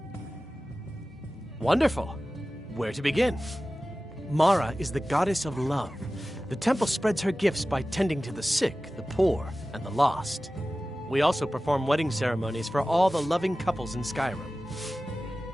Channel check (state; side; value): normal; both; correlation 0.96